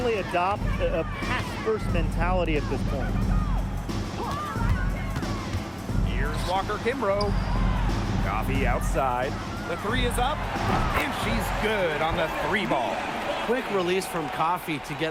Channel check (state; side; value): identical; both; correlation 1.00